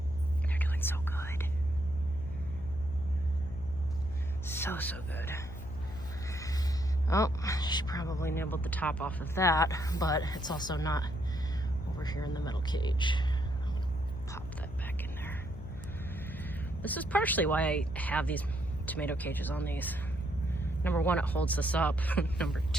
They're doing so good. So good. Oh, she probably nibbled the top off of that, but it's also not over here in the metal cage. I'm gonna pop that back in there. This is partially why I have these tomato cages on these. Number 1, it holds this up. Number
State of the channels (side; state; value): left; noise; hum, 11 dB below the sound